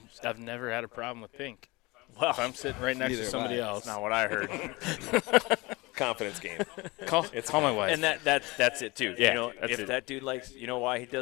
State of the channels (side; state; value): right; quieter; 23.5 dB